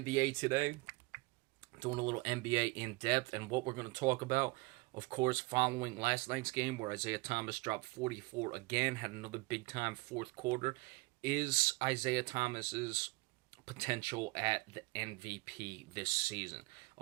today, doing a little NBA in depth, and what we're going to talk about, of course, following last night's game where Isaiah Thomas dropped 44 again, had another big time fourth quarter, is Isaiah Thomas's potential at the MVP this season.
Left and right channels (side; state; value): left; quieter; 24.4 dB